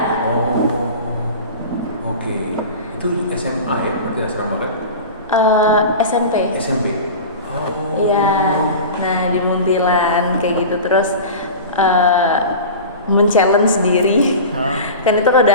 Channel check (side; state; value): both; inverted; correlation -0.33